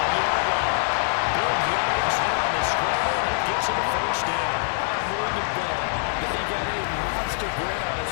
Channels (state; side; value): silent; right; digital silence